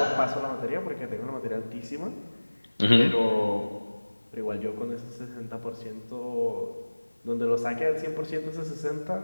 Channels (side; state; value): both; inverted; correlation -1.00